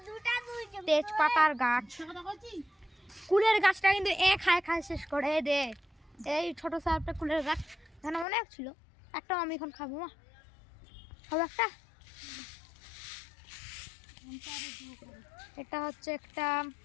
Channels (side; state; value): right; drops out; at 8.2 s